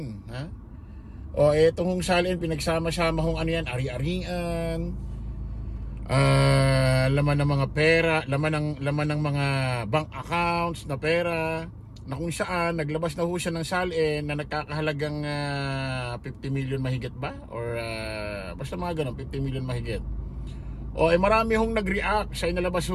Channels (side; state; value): both; identical; correlation 1.00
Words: ha? O itong salin pinagsama-sama hong ano yan, ari-arian, laman ng mga pera, laman ng mga bank accounts na pera, na kung saan naglabas na ho siya ng salin na nagkakahalagang 50 million mahigit ba? Or basta mga ganun, 50 million mahigit. O marami hong nag-react sa inalabas